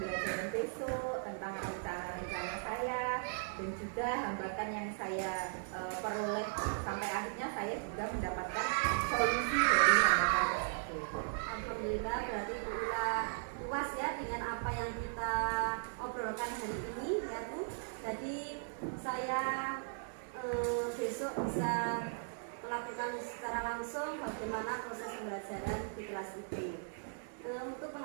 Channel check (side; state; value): left; silent; digital silence